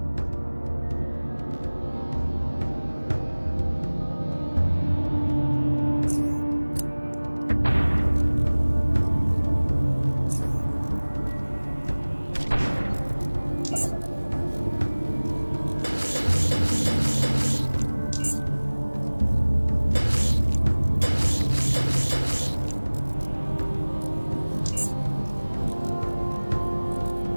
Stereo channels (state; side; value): inverted; both; correlation -1.00